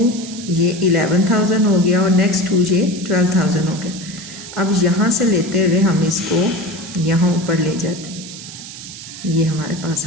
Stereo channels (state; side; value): noise; right; hiss, 13 dB below the sound